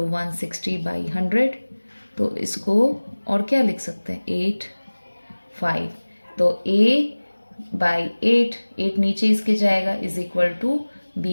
160/100। तो इसको और क्या लिख सकते हैं, 8, 5। तो A/8, 8 नीचे इसके जाएगा, इज इक्वल टू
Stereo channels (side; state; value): both; inverted; correlation -1.00